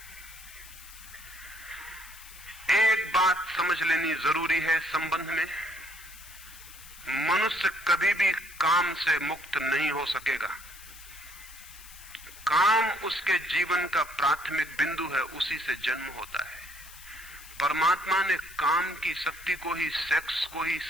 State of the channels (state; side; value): noise; left; hiss, 18 dB below the sound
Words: एक बात समझ लेनी जरूरी है संबंध में, मनुष्य कभी भी काम से मुक्त नहीं हो सकेगा। काम उसके जीवन का प्राथमिक बिंदु है, उसी से जन्म होता है। परमात्मा ने काम की शक्ति को ही, सेक्स को ही